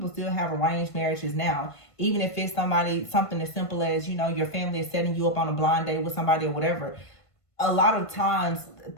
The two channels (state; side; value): late; right; 1.5 ms